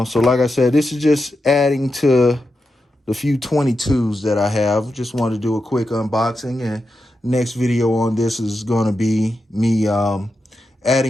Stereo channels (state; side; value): normal; both; correlation 0.88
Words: so like I said, this is just adding to the few 22s that I have. Just wanted to do a quick unboxing. And next video on this is going to be me